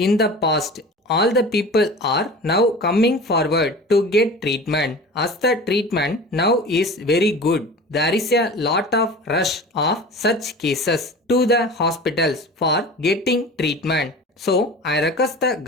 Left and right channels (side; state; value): both; normal; correlation 0.37